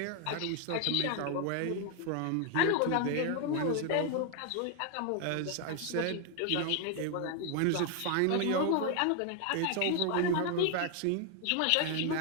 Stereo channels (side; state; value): both; different; correlation 0.01